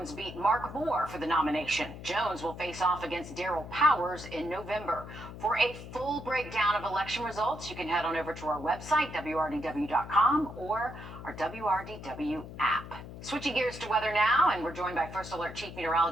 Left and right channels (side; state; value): left; noise; hum, 12 dB below the sound